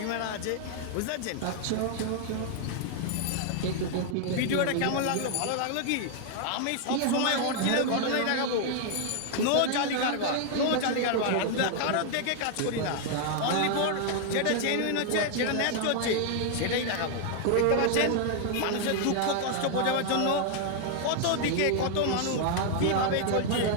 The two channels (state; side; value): different; both; correlation 0.00